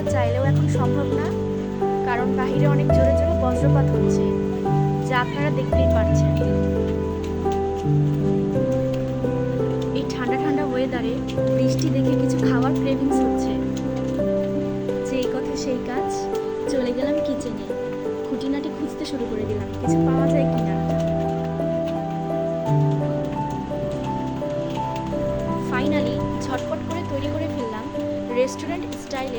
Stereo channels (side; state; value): both; identical; correlation 1.00